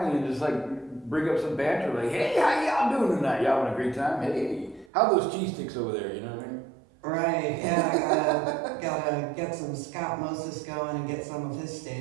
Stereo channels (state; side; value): drops out; left; at 4.9 s